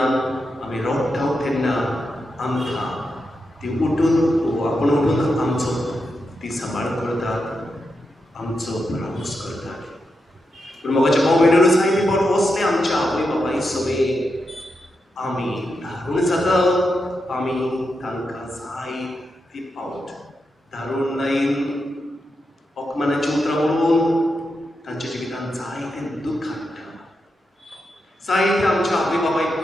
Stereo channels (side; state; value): both; normal; correlation 0.86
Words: आमी रडटा तेन्ना आमकां ती उठून आपण उठून आमचो ती सांबाळ करतात, आमचो रावूस करतात. पूण म्हज्या भाव भयणीनो, जायते फावट असले आमच्या आवय बापाय सगळे आमी धारून जाता, आमी तांकां जायते फावट धारून लायन अपमानाची उतरां म्हणून तांच्या जिवितांत जायतें दूख हाडटा. जायते आमच्या आवय